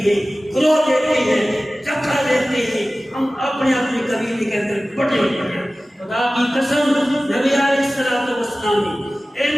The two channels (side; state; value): both; normal; correlation 0.97